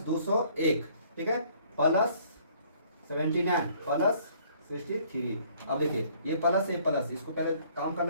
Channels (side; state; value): both; inverted; correlation -0.60